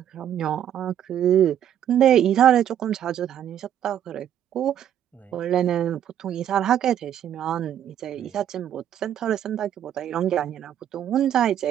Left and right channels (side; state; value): left; quieter; 10.3 dB